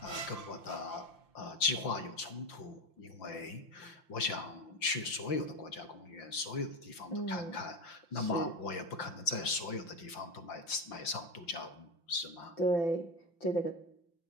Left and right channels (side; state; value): right; late; 5.8 ms